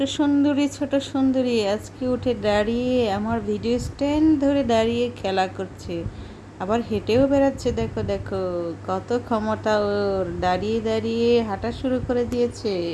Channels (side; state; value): both; identical; correlation 1.00